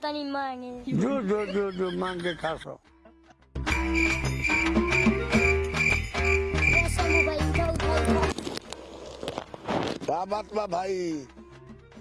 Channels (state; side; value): identical; both; correlation 1.00